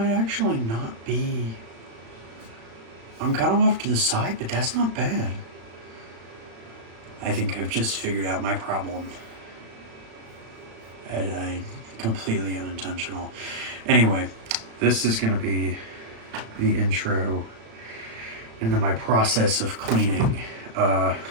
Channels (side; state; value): left; late; 36 ms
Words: actually not be... I'm kind of off to the side, but that's not bad. I think I've just figured out my problem. And I completely unintentional. Anyway, this is going to be the intro into my process of cleaning.